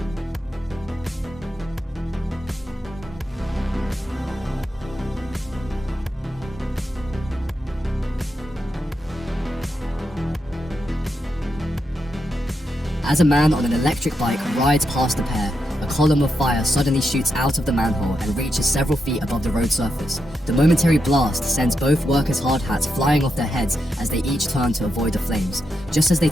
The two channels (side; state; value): both; normal; correlation 0.84